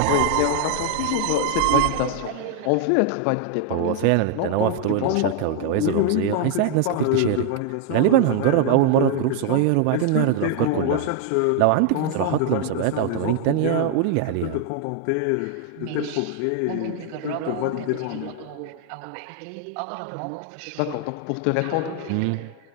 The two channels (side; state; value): both; different; correlation 0.00